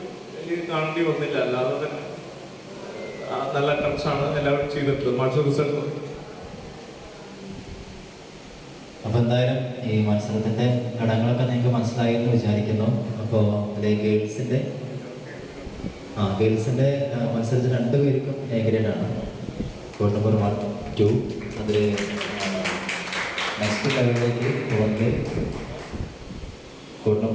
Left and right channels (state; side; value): identical; both; correlation 1.00